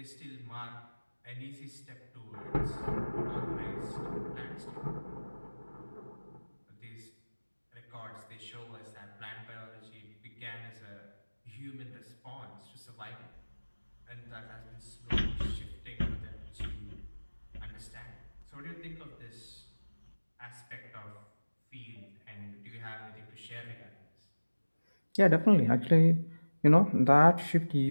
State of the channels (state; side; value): inverted; both; correlation -1.00